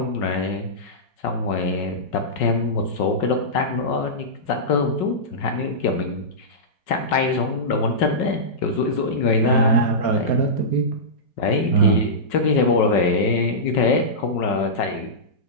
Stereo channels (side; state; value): right; late; 5.4 ms